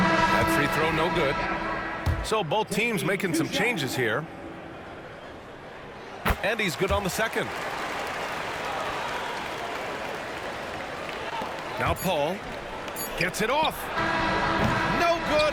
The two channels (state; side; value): identical; both; correlation 1.00